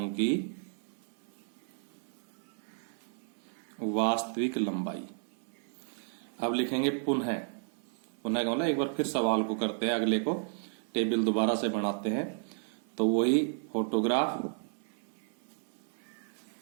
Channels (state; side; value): silent; left; digital silence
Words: की वास्तविक लंबाई। अब लिखेंगे पुनः का मतलब एक बार फिर सवाल को करते हैं, अगले को टेबल दोबारा से बनाते हैं। तो वही फोटोग्राफ,